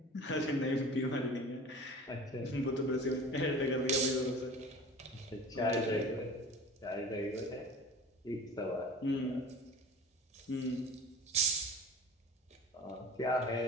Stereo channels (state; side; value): normal; both; correlation 0.39